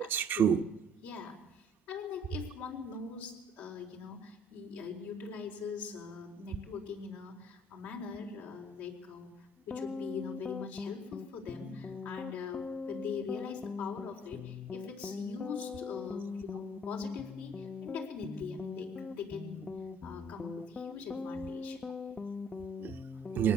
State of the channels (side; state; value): both; normal; correlation 0.57